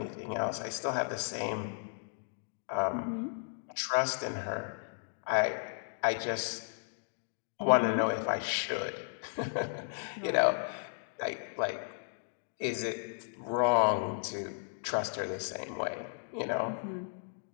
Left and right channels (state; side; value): silent; right; digital silence